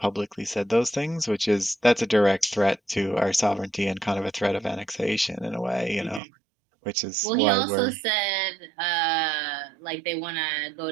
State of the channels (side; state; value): left; drops out; at 6.2 s